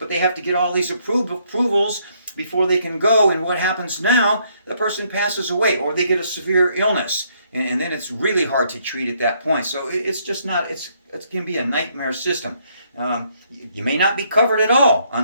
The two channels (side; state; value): both; inverted; correlation -0.70